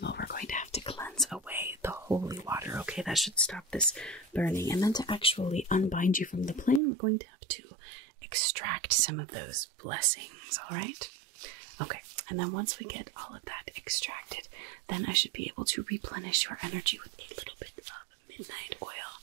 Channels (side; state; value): left; drops out; at 6.8 s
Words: all, we're going to have to cleanse away the holy water, okay? That should stop this burning. And then to actually unbind you from the plane, we're going to have to extract some of those blessings, all right? Okay, and then once we get all of that extracted, then I should be able to replenish your energy with a little bit of midnight oil